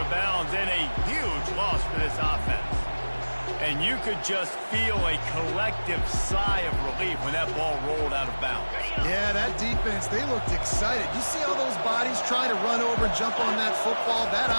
bounds, and a huge loss for this offense. And you could just feel a collective sigh of relief when that ball rolled out of bounds. Yeah, that defense, they looked excited. You see all those bodies trying to run over and jump on that football? That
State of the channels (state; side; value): inverted; both; correlation -1.00